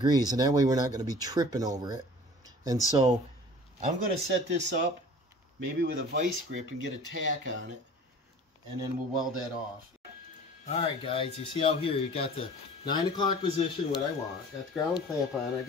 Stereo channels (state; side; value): normal; both; correlation 0.45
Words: and that way we're not going to be tripping over it. And so I'm going to set this up maybe with a vice grip and get a tack on it, and then we'll weld that off. Alright guys, you see out here you got the 9 o'clock position, what I want. Got the ground clamp on, I